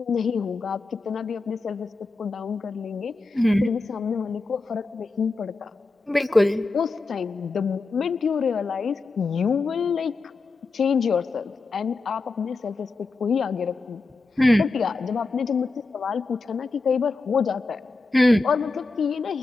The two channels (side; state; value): right; quieter; 3.7 dB